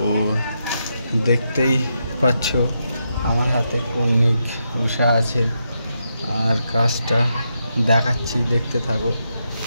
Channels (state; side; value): inverted; both; correlation -0.83